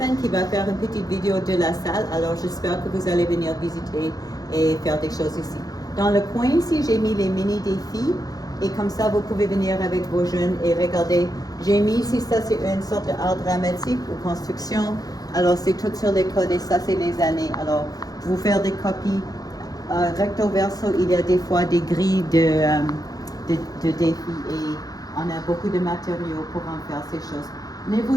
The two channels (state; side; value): late; right; 0.18 ms